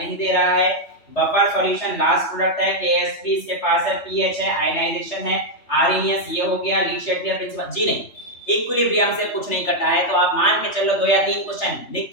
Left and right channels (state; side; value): late; right; 3.3 ms